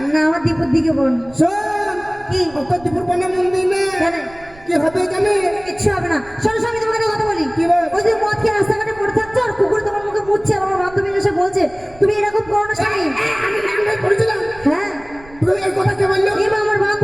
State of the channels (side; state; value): right; noise; rumble, 23 dB below the sound